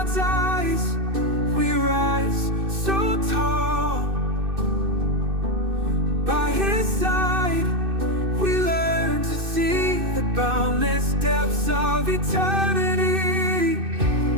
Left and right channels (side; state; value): left; late; 2.6 ms